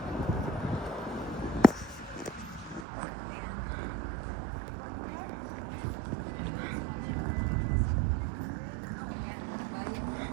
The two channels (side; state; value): left; drops out; at 2.9 s